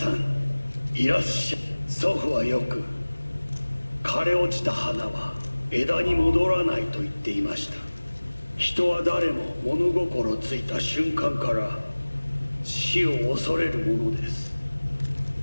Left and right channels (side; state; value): both; inverted; correlation -1.00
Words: ん、いらっしゃい。祖父はよく、枯れ落ちた花は枝に戻らないと言っていました。人は誰も物心ついた瞬間から死を恐れるものです。